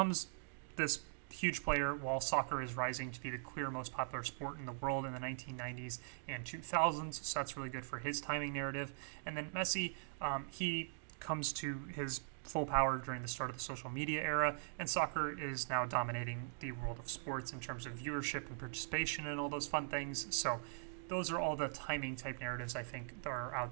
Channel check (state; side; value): silent; left; digital silence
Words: this huge player while soccer is rising to be the clear most popular sport in the world in the 1990s and 2000s, so that's really good for his timing narrative. And then Messi, he comes to his full power during the start of the social media era, and soccer is now dominating the world of sports in terms of viewership and participation and all those fun things. So those are all the timing type narratives I think that are